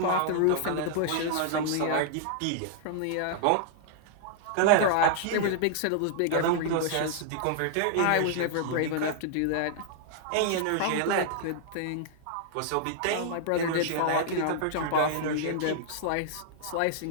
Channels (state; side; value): different; both; correlation -0.01